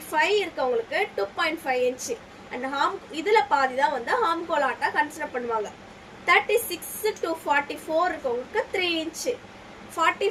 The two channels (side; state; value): both; identical; correlation 1.00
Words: இருக்கவங்களுக்கு 2.5 இன்ச்சு. அண்ட் இதுல பாதி தான் வந்து ஹார்ம்கோல் ஹார்ட்டா கன்சிடர் பண்ணுவாங்க. 36 to 44 இருக்கவங்களுக்கு 3 இன்ச்சு.